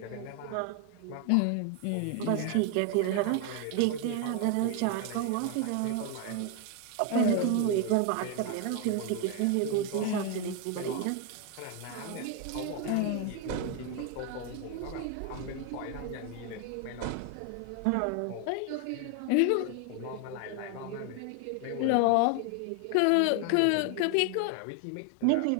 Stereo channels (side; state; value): both; different; correlation 0.01